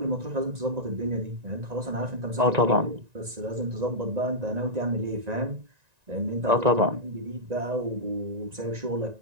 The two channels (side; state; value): left; late; 1.9 ms